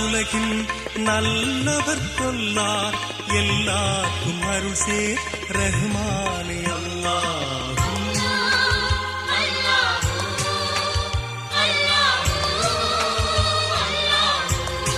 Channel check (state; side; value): identical; both; correlation 1.00